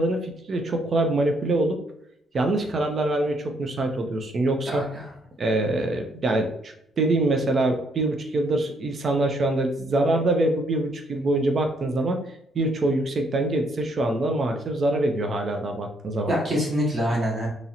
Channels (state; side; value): normal; both; correlation 0.70